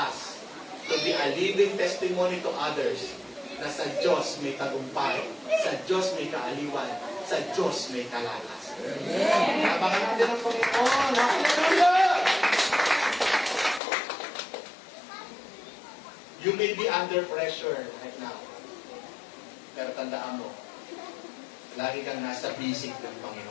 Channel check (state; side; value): drops out; right; at 13.8 s